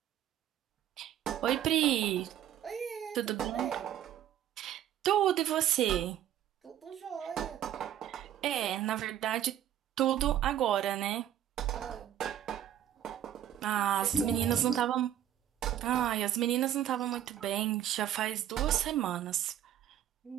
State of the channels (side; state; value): left; quieter; 11.1 dB